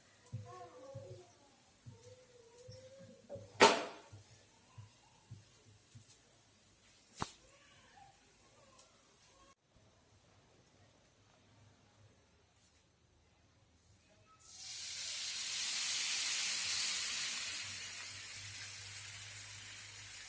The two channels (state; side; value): identical; both; correlation 1.00